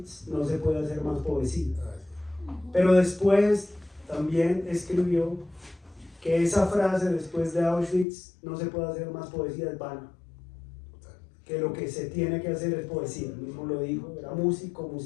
no se puede hacer más poesía. Pero después también escribió que esa frase, después de Auschwitz no se puede hacer más poesía, es vana, que lo que se tiene que hacer es poesía. Él mismo lo dijo, era músico,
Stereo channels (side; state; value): right; drops out; at 8.1 s